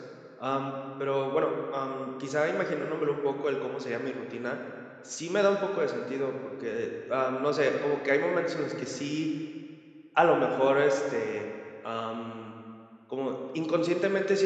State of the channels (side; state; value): both; identical; correlation 1.00